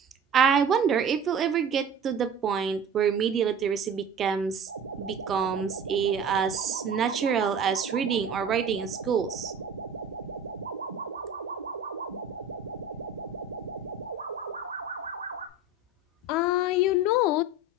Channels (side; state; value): left; quieter; 3.2 dB